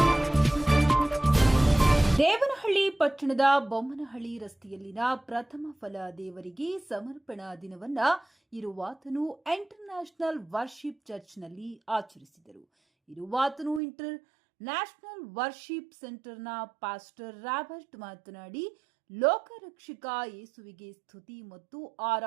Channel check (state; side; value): drops out; left; at 13.8 s